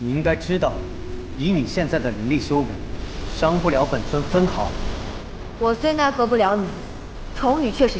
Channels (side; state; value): both; identical; correlation 1.00